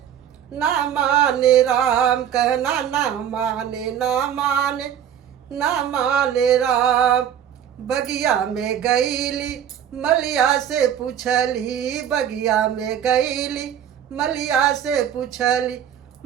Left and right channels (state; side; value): quieter; left; 9.5 dB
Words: ना माने राम कहना ना माने ना माने ना माने राम। बगिया में गईली मलिया से पूछली बगिया में गईली मलिया से पूछली